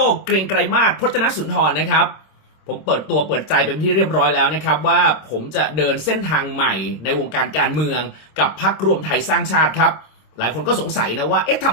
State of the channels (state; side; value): late; right; 26 ms